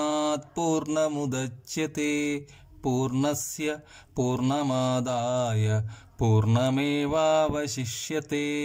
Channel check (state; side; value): identical; both; correlation 1.00